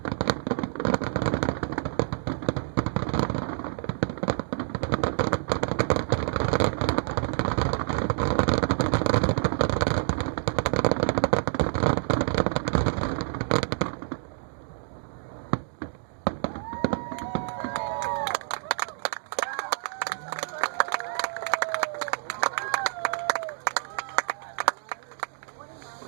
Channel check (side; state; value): left; silent; digital silence